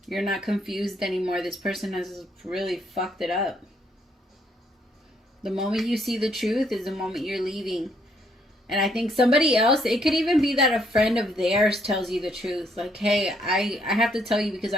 You're not confused anymore. This person has really fucked it up. The moment you see the truth is the moment you're leaving. And I think somebody else, it could even be that a friend of theirs tells you the truth. Like, hey, I have to tell you because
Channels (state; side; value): normal; both; correlation 0.70